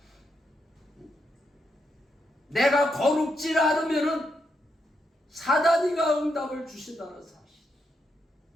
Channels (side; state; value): both; normal; correlation 0.81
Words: 내가 거룩지 않으면 사단이가 응답을 주신다는 사실.